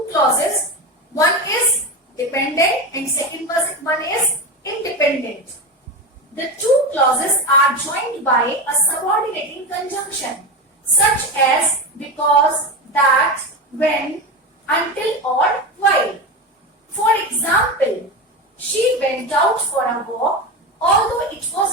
clauses. One is dependent and second one is independent. The two clauses are joined by a subordinating conjunction, such as because, that, when, until, or while. For example, she went out for a walk although it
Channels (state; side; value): normal; both; correlation 0.21